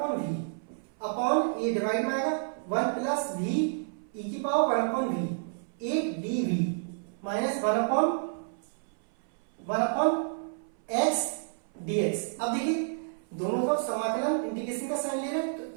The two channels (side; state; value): left; silent; 58 dB below the other